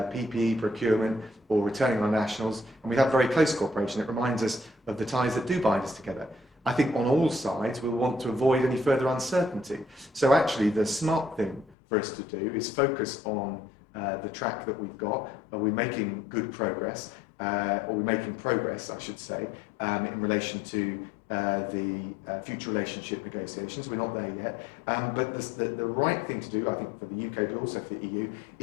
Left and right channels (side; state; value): right; drops out; at 11.8 s